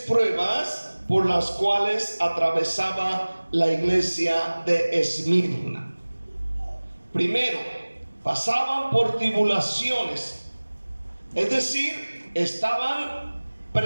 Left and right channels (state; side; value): inverted; both; correlation -1.00